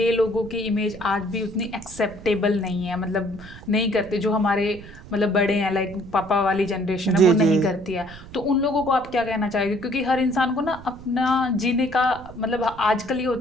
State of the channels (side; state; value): right; noise; rumble, 17 dB below the sound